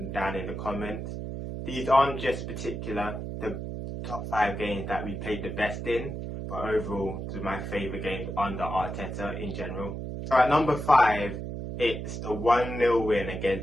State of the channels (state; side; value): noise; right; hum, 6 dB below the sound